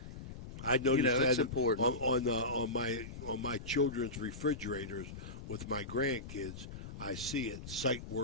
I noticed that it's important on my children's refrigerators with my grandkids. I see it, sight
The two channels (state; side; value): noise; left; rumble, 11 dB below the sound